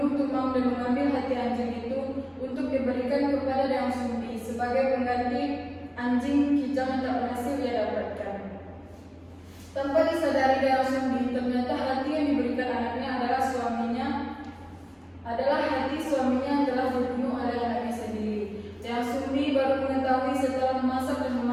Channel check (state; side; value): identical; both; correlation 1.00